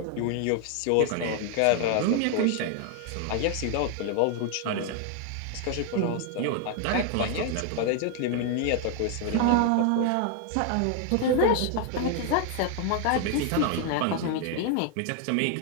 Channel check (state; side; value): different; both; correlation 0.00